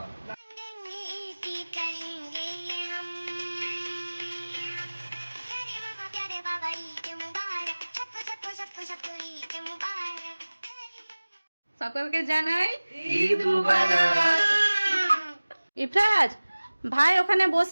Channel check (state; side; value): inverted; both; correlation -1.00